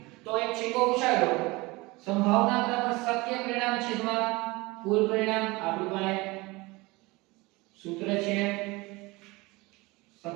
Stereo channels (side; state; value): left; quieter; 23.0 dB